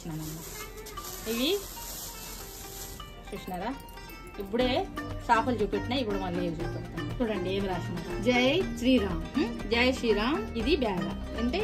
అన్నమాట. ఇవి చూసినారా, ఇప్పుడే చేపలు చూపెట్టినా. ఇప్పుడు మళ్ళీ ఏవి చూపెడతాను. చూడండి ఏమి రాసినారు, జై శ్రీరామ్. ఇది బ్యాగ్ అంటే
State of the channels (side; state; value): both; identical; correlation 1.00